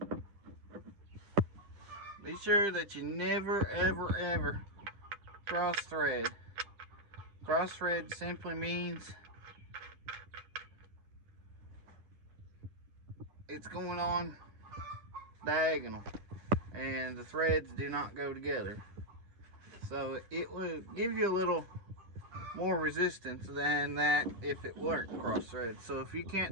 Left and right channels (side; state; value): left; late; 10 ms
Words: Be sure that you never ever cross thread. Cross thread simply means it's going on diagonal, and the threads do not go together. So it will give you a little more resistance than that if it weren't cross thread. So if you